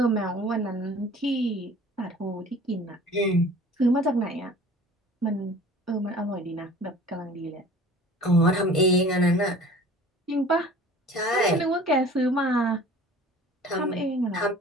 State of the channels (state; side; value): normal; both; correlation 0.46